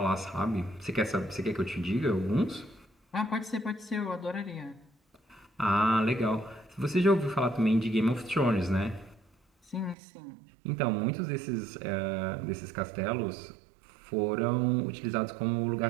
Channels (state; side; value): drops out; left; at 10.0 s